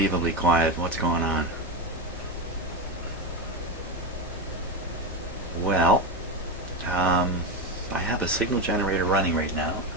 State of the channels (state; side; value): normal; both; correlation 0.15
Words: quiet. What's going on? Well, I have a signal generator running right now.